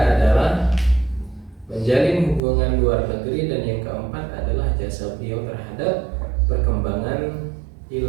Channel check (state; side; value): drops out; left; at 2.4 s